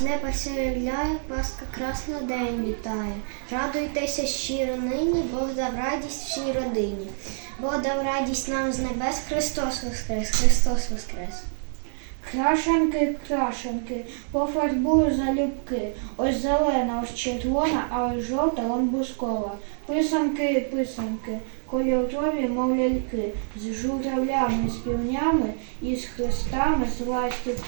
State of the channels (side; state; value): left; silent; digital silence